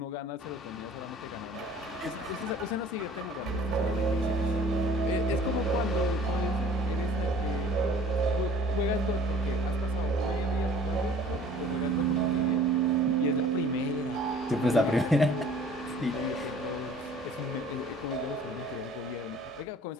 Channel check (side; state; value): both; normal; correlation 0.50